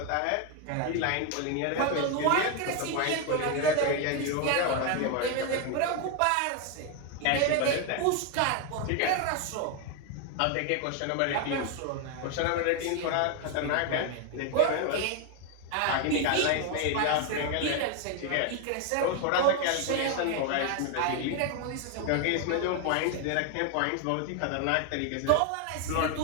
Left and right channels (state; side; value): different; both; correlation 0.01